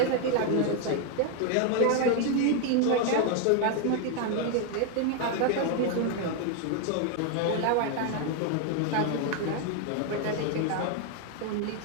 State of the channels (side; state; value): both; different; correlation 0.01